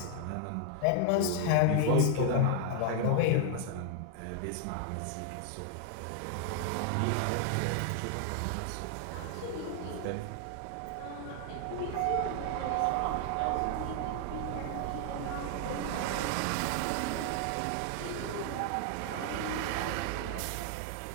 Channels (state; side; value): different; both; correlation 0.00